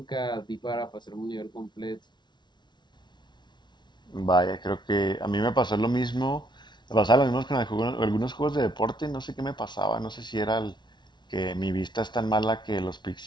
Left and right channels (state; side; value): late; right; 0.21 ms